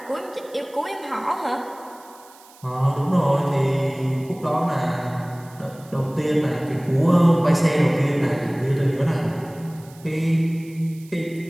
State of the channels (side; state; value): right; noise; hiss, 25 dB below the sound